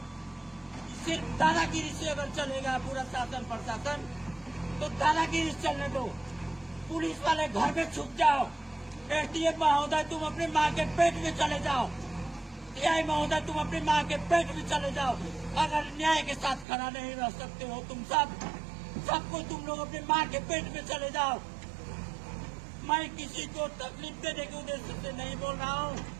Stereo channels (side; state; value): left; drops out; at 16.7 s